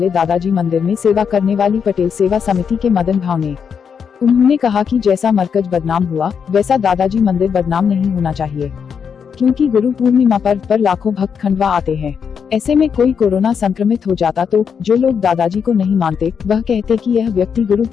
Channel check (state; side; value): quieter; right; 6.8 dB